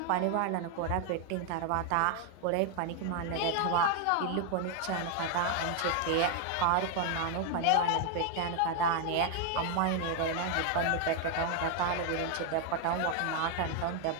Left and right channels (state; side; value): different; both; correlation 0.00